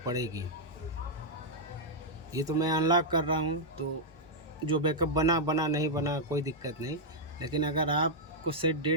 पड़ेगी। ये तो मैं अनलॉक कर रहा हूँ, तो जो बैकअप बना बना, नहीं बना कोई दिक्कत नहीं, लेकिन अगर आपको सेट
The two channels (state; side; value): normal; both; correlation -0.05